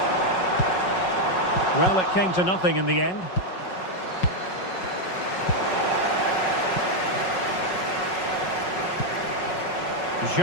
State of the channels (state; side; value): late; right; 5.4 ms